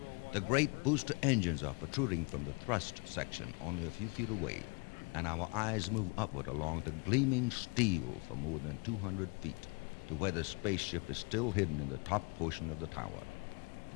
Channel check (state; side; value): quieter; right; 32.0 dB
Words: The great booster engines are protruding from the thrust section only a few feet away, and our eyes move upward along the gleaming steel for more than 200 feet to where the spaceship is still hidden in the top portion of the tower.